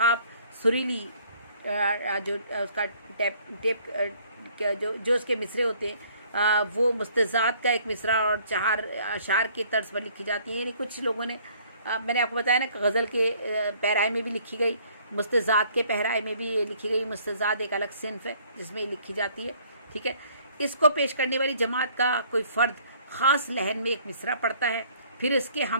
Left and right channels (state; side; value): inverted; both; correlation -0.59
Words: सुरीली जो उसका जो उसके मिसरे होते हैं वो मुस्तज़ात का एक मिसरा और चहार अशार की तर्ज पर लिखी जाती हैं। यानी कुछ लोगों ने मैंने आपको बताया ना, गज़ल के पैराए में भी लिखी गई, मुस्तज़ात के पैराए में भी ये लिखी गई। मुस्तज़ात एक अलग सिन्फ है जिसमें ये लिखी जाती है, ठीक है। इसको पेश करने वाली जमात का कोई फ़र्द ख़ास लहन में एक मिसरा पढ़ता है, फिर इसके